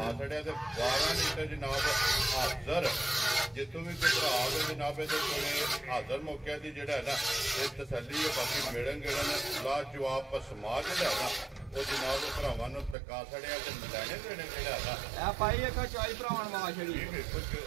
ਛੜਿਆ ਤੇ 12 ਲੀਟਰ ਜਨਾਬ ਹਾਜ਼ਰ ਜਿੱਥੋਂ ਵੀ ਕੋਈ ਭਰਾ ਆਵੇ ਜਨਾਬ ਇਹਦੇ ਕੋਲੇ ਹਾਜ਼ਰ ਮੌਕਿਆਂ ਦੀ ਜਿਹੜਾ ਨਾ ਇਹ ਤਸੱਲੀ ਹੈ ਬਾਕੀ ਮਿਲਣ ਗਿਲਣ ਲਾ ਜਵਾਬ ਪਸਮਾ ਜਿਹੜਾ ਨਾ ਉਹ ਜਨਾਬ ਭਰਾਵਾਂ ਨੂੰ ਤਕਾ ਛੜਿਆ ਤੇ ਲੈਣੇ ਦੇਣੇ ਜਿਹੜਾ ਨਾ ਇਹ ਭਾਈ ਇੱਕ ਚੋਈ ਭਰਾਵਾਂ ਨੂੰ ਫਾ ਛੜੀ ਇਹ ਬਿਲਕੁਲ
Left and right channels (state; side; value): drops out; left; at 13.0 s